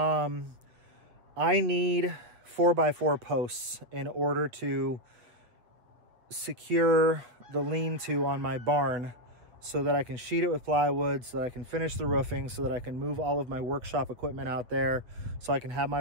I need 4x4 posts in order to secure the lean-to on my barn so that I can sheet it with plywood, so that I can finish the roofing, so that I can move all of my workshop equipment out there, so I can have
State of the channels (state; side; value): late; left; 7.8 ms